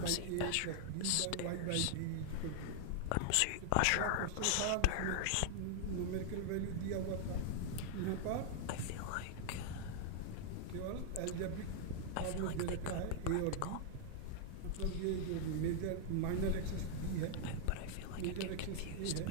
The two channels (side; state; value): both; different; correlation 0.00